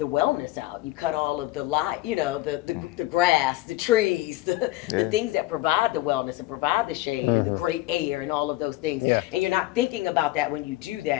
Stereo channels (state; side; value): quieter; right; 17.5 dB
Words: wellness out. You cut all of the light, you know, the grass, the trees, the things that provide the wellness and provide the shade and the great air and all of those things. Yeah. And you're not thinking about that when you do